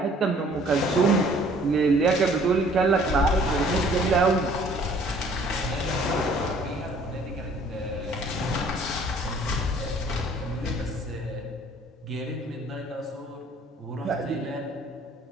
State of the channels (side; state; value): both; normal; correlation 0.56